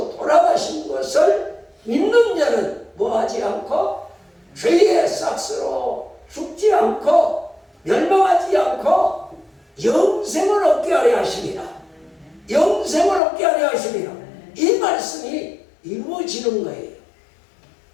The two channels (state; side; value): drops out; right; at 13.2 s